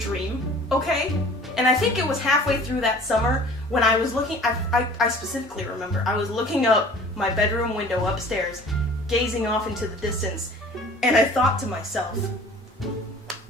okay? And I think it was halfway through that summer when I was looking, I specifically remember, I was looking up my bedroom window upstairs, gazing off into the distance, and I thought to myself,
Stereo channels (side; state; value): both; normal; correlation 0.47